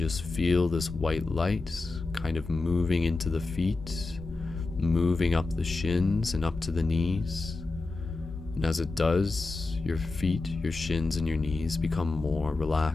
feel this white light kind of moving into the feet, moving up the shins and up to the knees. And as it does, your feet, your shins, and your knees become more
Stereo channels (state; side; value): quieter; right; 3.5 dB